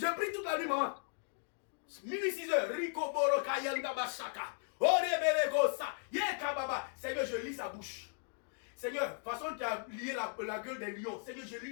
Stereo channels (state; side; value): silent; right; 53 dB below the other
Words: prie toute la nuit, maman. Minuit 6 heures. Rico Boro Kayanda Bashaka. Seigneur, je lis sa bouche. Seigneur, façon tu as lié la gueule des lions. Seigneur, je lis